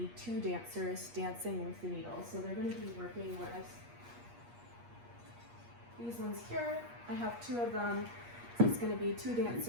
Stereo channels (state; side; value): late; left; 8.4 ms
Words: two dancers dancing with the needles. So they're going to be working with these ones here. I have two of them. So it's going to be two